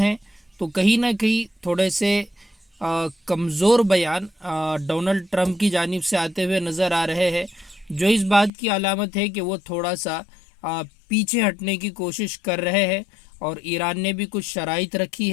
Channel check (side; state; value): right; drops out; at 8.5 s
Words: तो कहीं ना कहीं थोड़े से कमज़ोर बयान डोनाल्ड ट्रंप की जानिब से आते हुए नज़र आ रहे हैं, जो इस बात की अलामत है कि वो थोड़ा सा पीछे हटने की कोशिश कर रहे हैं और ईरान ने भी कुछ शराइत रखी